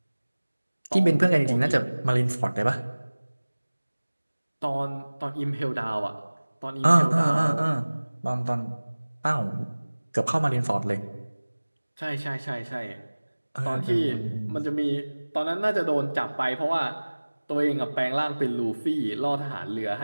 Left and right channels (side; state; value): both; inverted; correlation -1.00